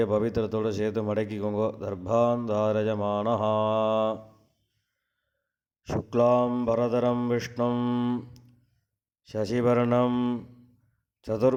பவித்திரத்தோடு சேர்த்து மடக்கிக்கோங்க. தர்பாந்தாரஜமானா. சுக்லாம் பரதரம் விஷ்ணும் சசிவர்ணம்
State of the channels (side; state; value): both; identical; correlation 1.00